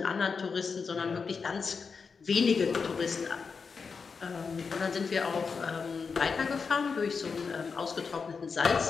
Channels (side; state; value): right; quieter; 5.3 dB